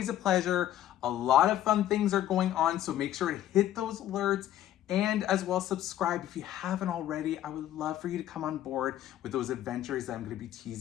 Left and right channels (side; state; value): right; quieter; 12.3 dB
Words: a pleasure. A lot of fun things are going on, so make sure to hit those alerts And as well, subscribe if you haven't already. I would love for you to come on board with those adventures that I'm going to be